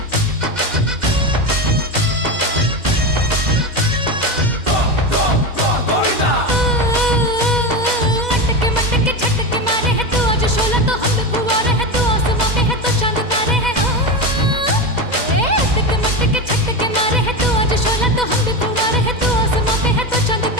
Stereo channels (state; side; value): late; left; 2.0 ms